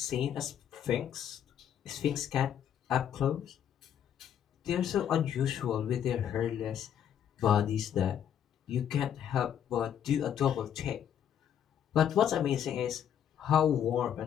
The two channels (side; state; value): right; quieter; 9.3 dB